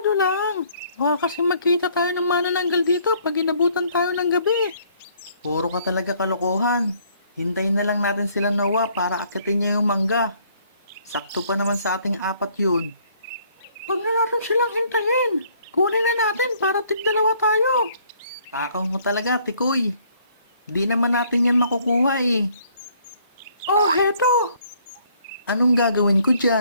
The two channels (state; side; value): inverted; both; correlation -0.63